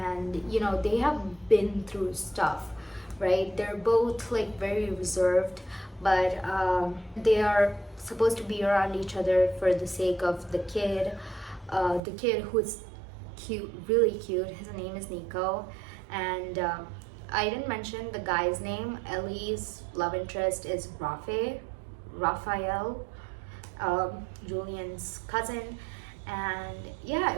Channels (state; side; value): drops out; left; at 12.0 s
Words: you know, they have been through stuff, right? They're both like very reserved, but they are supposed to be around each other for the sake of the kid who is cute, really cute. His name is Nico. And I didn't mention the guy's name. Ellie's love interest is Raphael, Julian's cousin. And yeah,